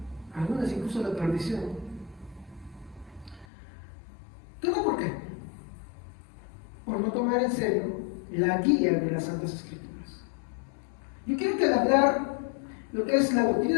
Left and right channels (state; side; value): drops out; right; at 3.5 s